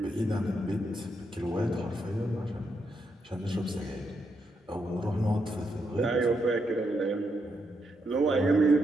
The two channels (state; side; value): normal; both; correlation 0.81